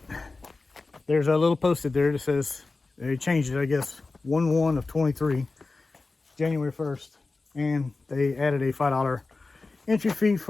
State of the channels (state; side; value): quieter; right; 3.7 dB